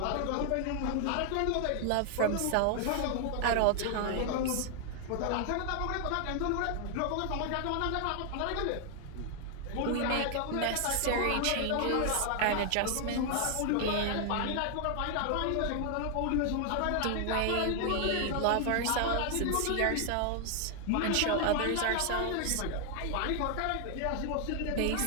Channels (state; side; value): different; both; correlation 0.00